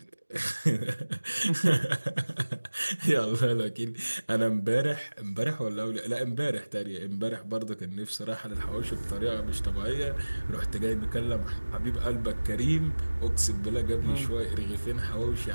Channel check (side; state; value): both; inverted; correlation -1.00